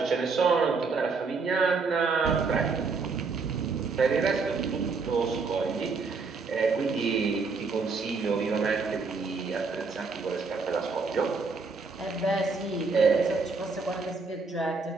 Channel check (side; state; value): left; quieter; 4.5 dB